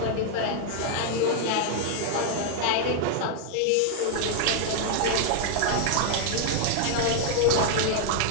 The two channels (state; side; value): different; both; correlation 0.00